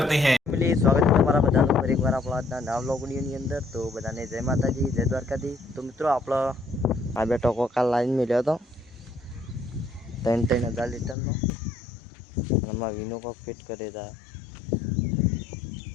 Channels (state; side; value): drops out; right; at 11.2 s